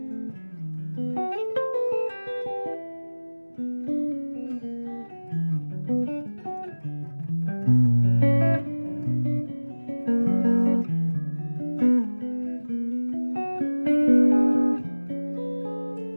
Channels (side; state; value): both; inverted; correlation -1.00